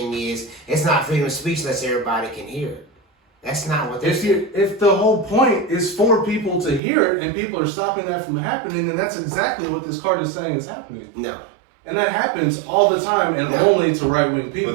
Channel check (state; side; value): drops out; left; at 6.8 s